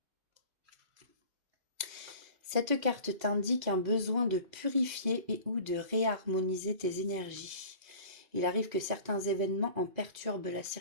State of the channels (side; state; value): left; late; 2.0 ms